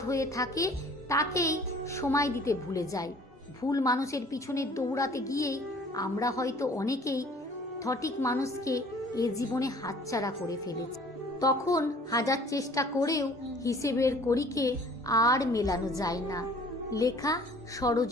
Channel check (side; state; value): both; normal; correlation 0.52